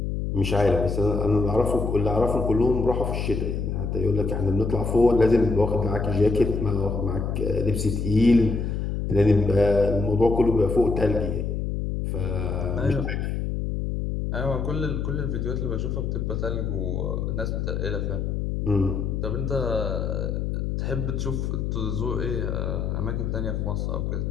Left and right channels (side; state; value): left; noise; hum, 1 dB below the sound